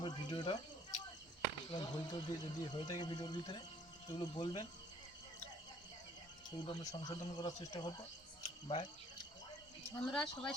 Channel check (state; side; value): normal; both; correlation 0.58